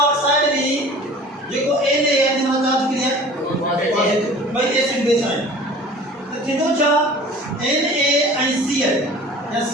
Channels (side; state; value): both; normal; correlation 0.44